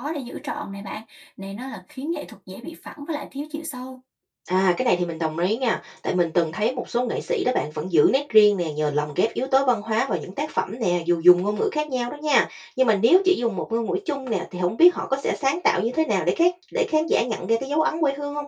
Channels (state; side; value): identical; both; correlation 1.00